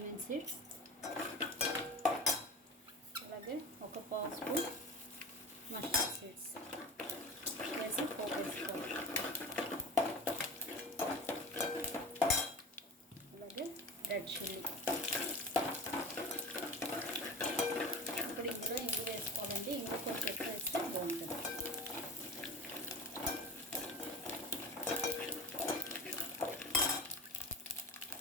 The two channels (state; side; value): normal; both; correlation 0.34